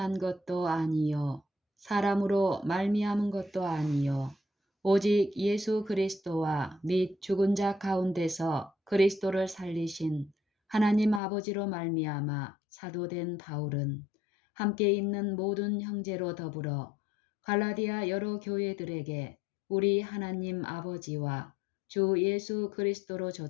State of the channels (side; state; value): right; drops out; at 11.2 s